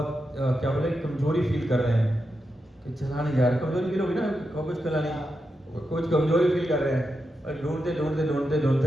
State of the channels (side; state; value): both; normal; correlation 0.87